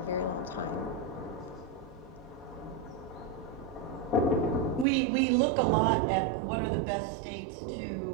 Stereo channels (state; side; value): drops out; left; at 4.9 s